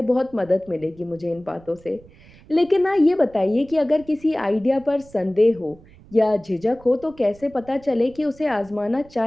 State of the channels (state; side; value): noise; right; rumble, 24 dB below the sound